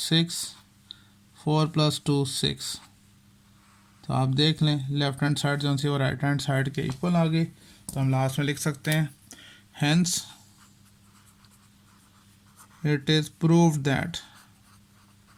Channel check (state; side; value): identical; both; correlation 1.00